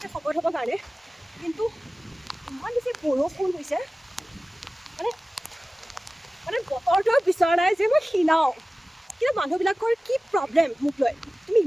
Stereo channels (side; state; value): both; normal; correlation 0.97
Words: শকত হ'বৰ কাৰণে। কিন্তু ইমান বেছি বৰষুণ হৈছে, মানে বতৰটোৱে বিচৰা নাই যে মই ক্ষীণাওঁ। কিন্তু মানুহবিলাকৰ কি প্ৰব্লেম মোক লৈ, তুমি